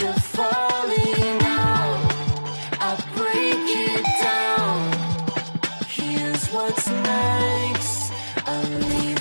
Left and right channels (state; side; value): inverted; both; correlation -1.00